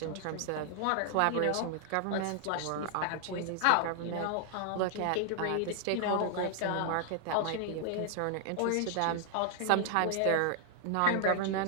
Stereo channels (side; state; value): both; different; correlation 0.00